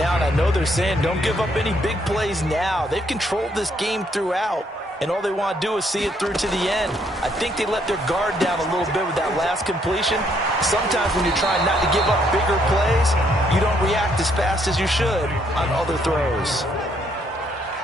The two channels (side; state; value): both; normal; correlation 0.70